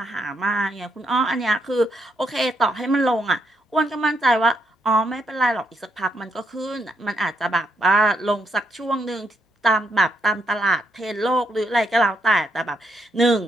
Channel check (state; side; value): normal; both; correlation 0.77